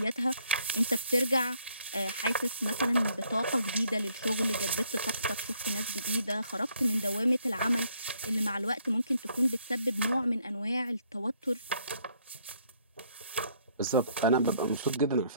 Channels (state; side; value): inverted; both; correlation -0.68